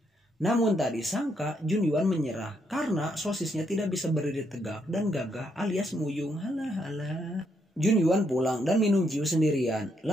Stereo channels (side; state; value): both; normal; correlation 0.76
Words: Namun tak disangka Jun Yuan menyerah karena sosisnya tidak bisa berdiri tegak dan gagah alias muyung. Halah. Jun Yuan pulang dan minum jiu sendirian.